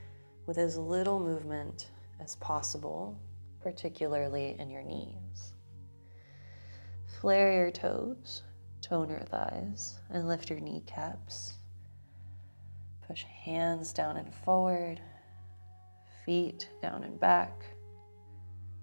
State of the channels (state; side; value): inverted; both; correlation -1.00